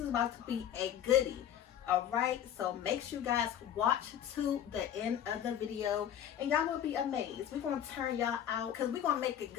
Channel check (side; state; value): right; quieter; 10.1 dB